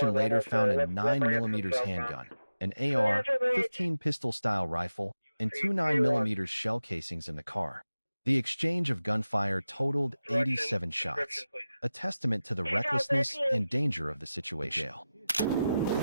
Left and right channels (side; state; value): both; inverted; correlation -0.94